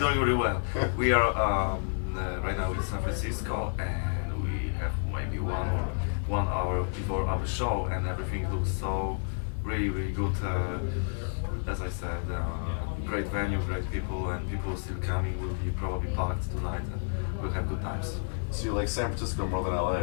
doing really well. We are right now in San Francisco, and we have maybe 1 hour before our show, and everything looks so really good. As I said, great venue, great people, and people still coming. Will be probably packed tonight, and we'll have good times. So you like San Francisco more than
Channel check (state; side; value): silent; right; digital silence